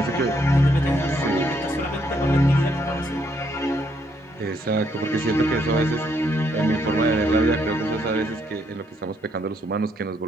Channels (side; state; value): both; normal; correlation 0.73